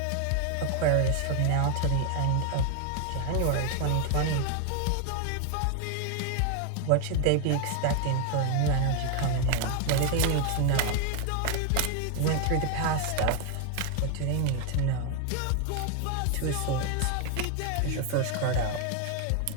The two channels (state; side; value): different; both; correlation 0.00